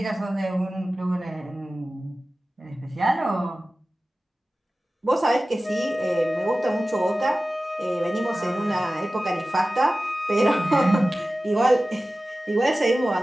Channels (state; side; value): normal; both; correlation 0.96